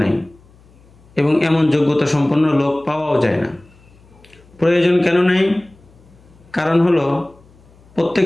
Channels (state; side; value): noise; left; hum, 28 dB below the sound